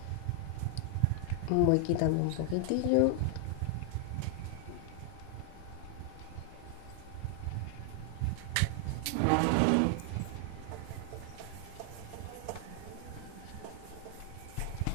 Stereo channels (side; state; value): both; different; correlation 0.00